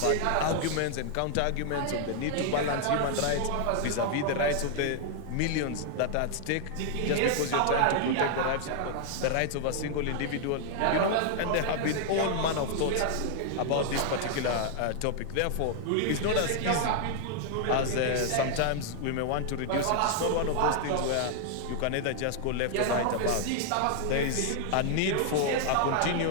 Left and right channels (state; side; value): different; both; correlation 0.00